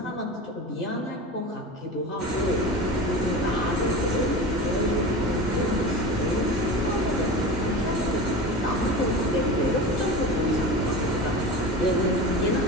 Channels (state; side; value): normal; both; correlation 0.30